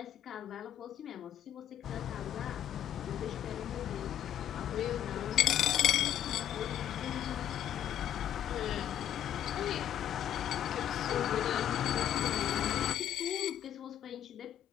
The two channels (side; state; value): right; quieter; 11.1 dB